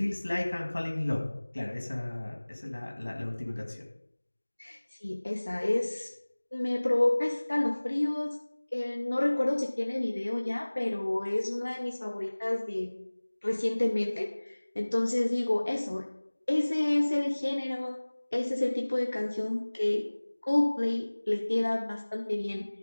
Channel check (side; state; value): both; inverted; correlation -1.00